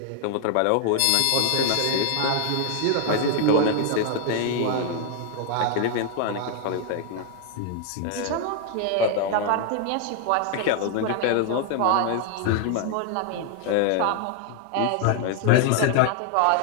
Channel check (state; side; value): different; both; correlation 0.00